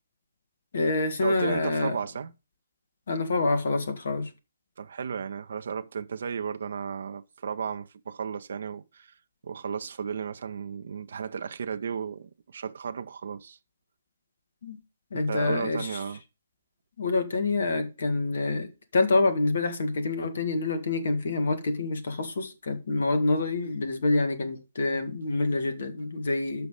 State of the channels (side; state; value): both; inverted; correlation -0.82